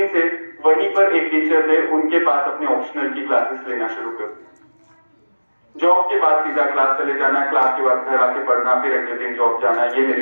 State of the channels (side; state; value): both; inverted; correlation -1.00